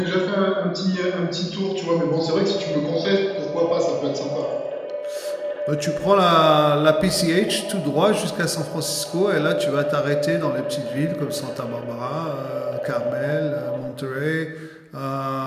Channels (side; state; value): both; identical; correlation 1.00